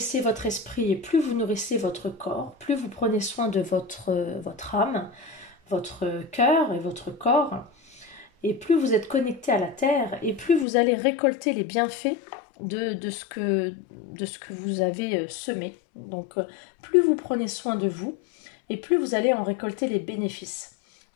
votre esprit et plus vous nourrissez votre corps, plus vous prenez soin de votre âme, votre cœur et votre corps, et plus vous êtes connecté à la terre, et plus vous allez récolter les bienfaits de ce que vous avez semé. Donc, plus vous prenez soin de vous, et plus vous allez en récolter les bénéfices.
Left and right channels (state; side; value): drops out; right; at 10.7 s